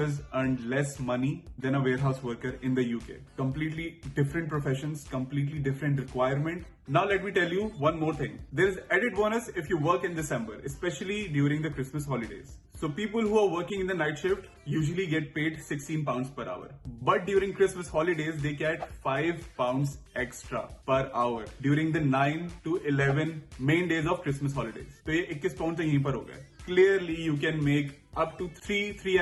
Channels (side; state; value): both; identical; correlation 1.00